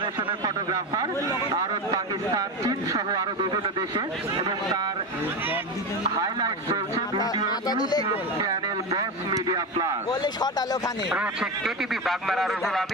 ফটোগ্রাফার, ভারত, পাকিস্তান, চীন সহ আরো বিভিন্ন দেশে, এবং তার হাইলাইট চলছে ভিডিও ইউটিউব চ্যানেল বস মিডিয়া প্লাস। রয়েছে কেটিভি বাগমারা রুহুল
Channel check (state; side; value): normal; both; correlation 0.19